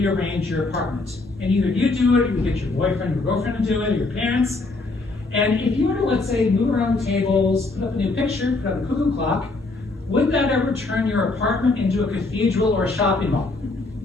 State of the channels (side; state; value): right; quieter; 3.4 dB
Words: your apartment, and either you do it, or you get your boyfriend or girlfriend to do it, or your parents. And if you were to, let's say, move around the tables, put up a new picture, put up a cuckoo clock, would that ever turn your apartment into a cathedral or a shopping mall?